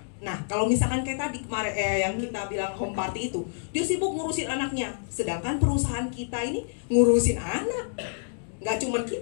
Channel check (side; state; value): right; silent; digital silence